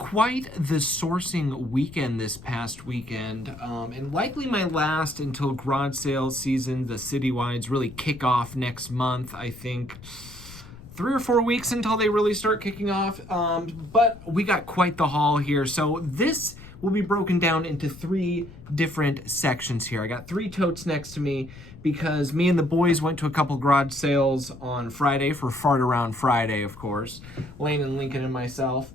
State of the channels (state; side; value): noise; left; rumble, 18 dB below the sound